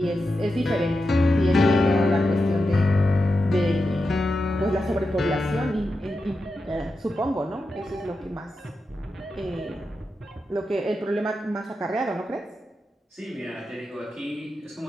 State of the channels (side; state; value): both; normal; correlation 0.89